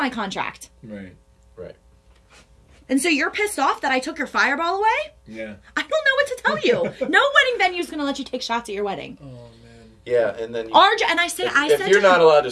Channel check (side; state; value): both; identical; correlation 1.00